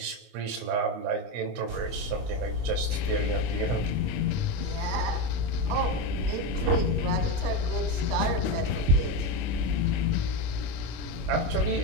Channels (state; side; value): late; left; 25 ms